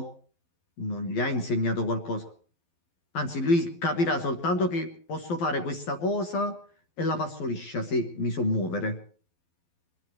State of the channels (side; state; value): right; late; 12 ms